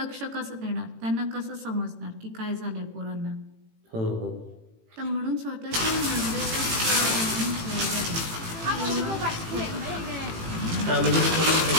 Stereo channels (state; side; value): late; left; 18 ms